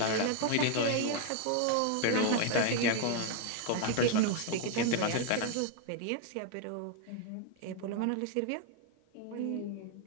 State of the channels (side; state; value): both; different; correlation 0.01